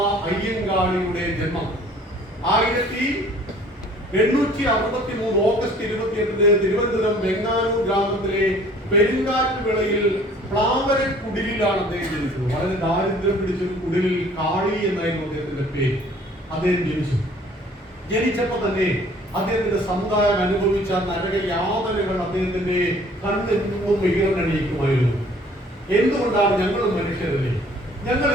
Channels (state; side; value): normal; both; correlation 0.54